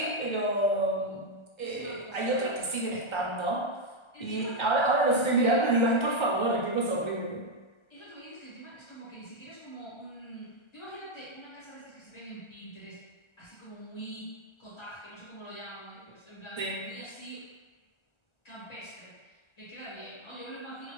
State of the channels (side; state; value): right; late; 1.3 ms